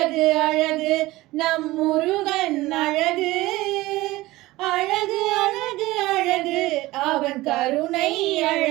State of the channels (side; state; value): left; quieter; 18.8 dB